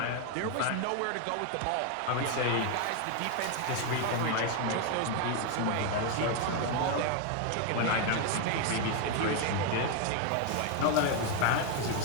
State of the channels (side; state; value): both; different; correlation 0.01